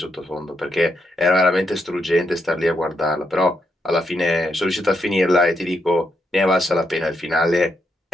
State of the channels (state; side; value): normal; both; correlation 0.80